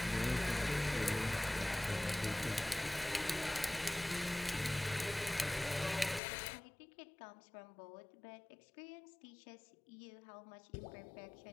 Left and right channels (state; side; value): drops out; right; at 6.2 s